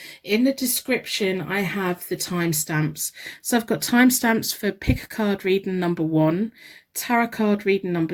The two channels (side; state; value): both; identical; correlation 1.00